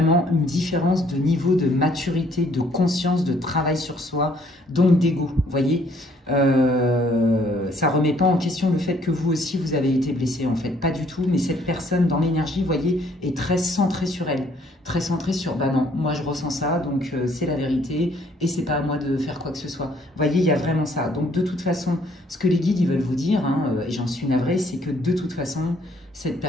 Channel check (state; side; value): normal; both; correlation 0.64